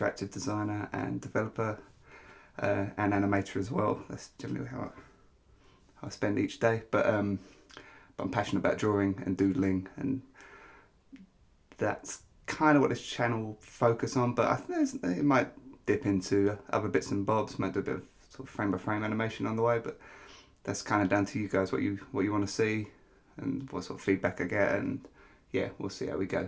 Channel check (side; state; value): both; identical; correlation 1.00